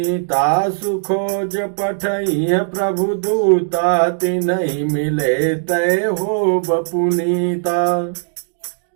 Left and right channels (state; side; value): silent; left; digital silence